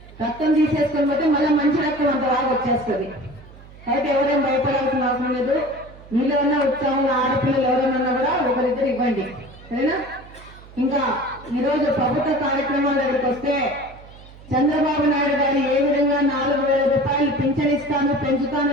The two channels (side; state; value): right; noise; hum, 20 dB below the sound